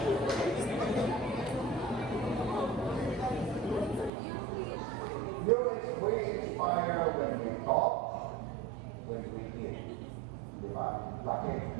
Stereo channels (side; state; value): left; drops out; at 4.1 s